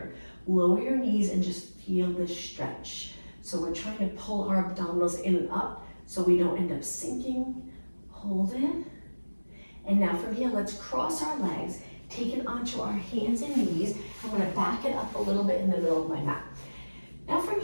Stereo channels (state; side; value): inverted; both; correlation -1.00